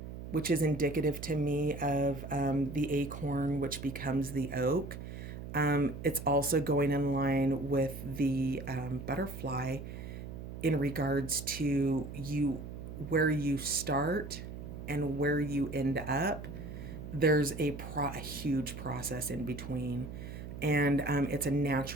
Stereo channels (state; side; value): noise; right; hum, 9 dB below the sound